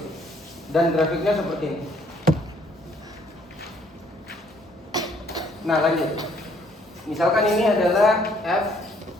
dan grafiknya seperti ini. Nah, lanjut. Misalkan ini adalah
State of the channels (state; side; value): normal; both; correlation 0.64